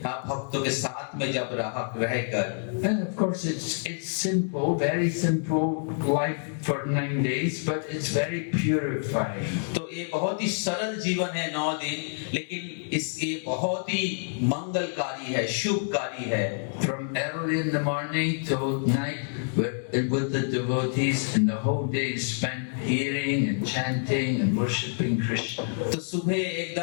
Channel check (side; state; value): right; silent; digital silence